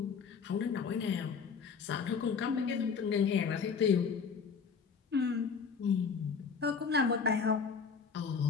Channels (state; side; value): quieter; right; 5.8 dB